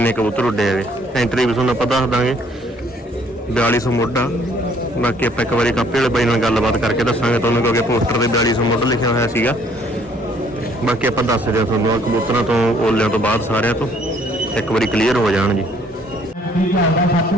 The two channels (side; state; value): both; normal; correlation 0.62